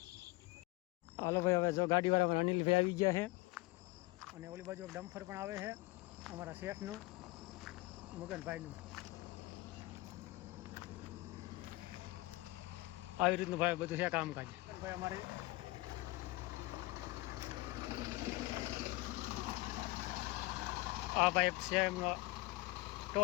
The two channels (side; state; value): right; quieter; 21.5 dB